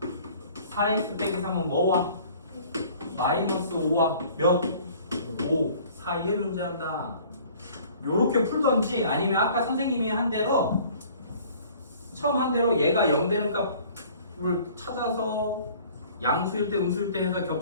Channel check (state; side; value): inverted; both; correlation -0.51